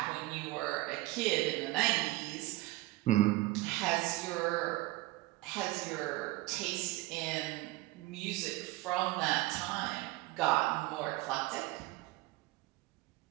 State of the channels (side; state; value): left; quieter; 19.5 dB